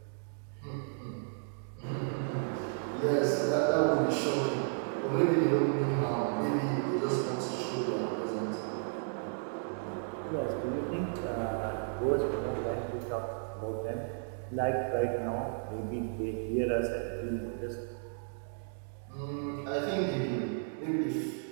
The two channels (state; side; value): silent; left; digital silence